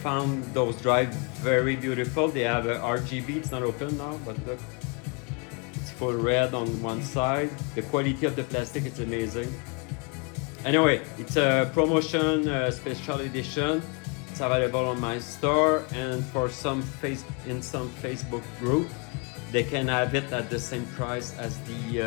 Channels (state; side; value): quieter; right; 32.8 dB